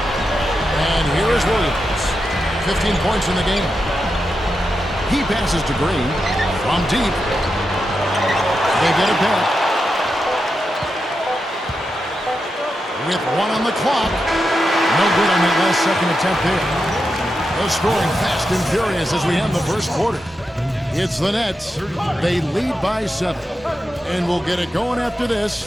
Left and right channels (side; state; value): both; normal; correlation 0.88